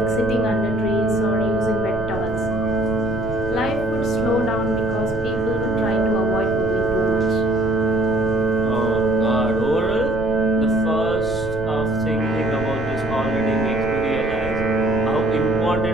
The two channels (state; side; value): noise; right; rumble, 10 dB below the sound